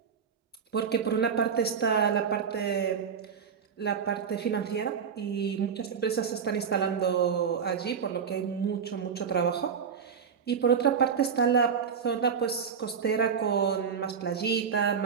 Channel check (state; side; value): quieter; left; 6.8 dB